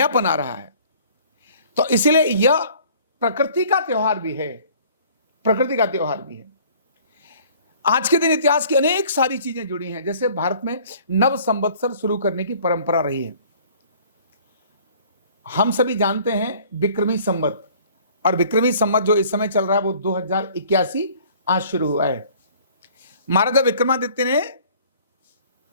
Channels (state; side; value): inverted; both; correlation -0.53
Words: आ रहा है। तो इसलिए यह प्रकृति का त्योहार भी है, प्रकृति का त्योहार भी है। आज के दिन इतिहास की अनेक सारी चीजें जुड़ी हैं। जैसे भारत में नव संवत्सर शुरू करने की परंपरा रही है। हम सभी जानते हैं विक्रमी संवत, और विक्रमी संवत जो इस समय चल रहा है वो 2081 आज शुरू हुआ है। महाराजा विक्रमादित्य ने